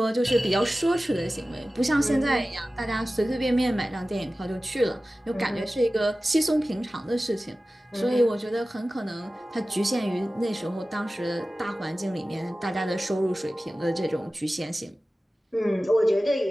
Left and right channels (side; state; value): both; normal; correlation 0.96